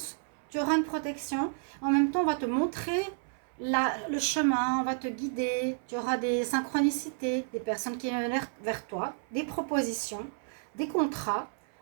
tu auras une protection, en même temps, on va te montrer le chemin, on va te guider, tu auras des synchronicités, des personnes qui viennent vers toi, des propositions, des contrats,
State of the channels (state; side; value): silent; left; 57 dB below the other